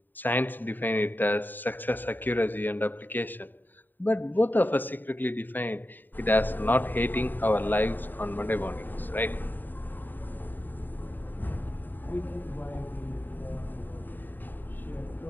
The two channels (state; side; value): late; right; 0.090 ms